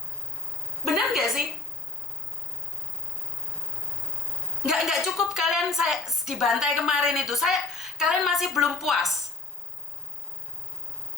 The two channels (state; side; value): quieter; right; 3.4 dB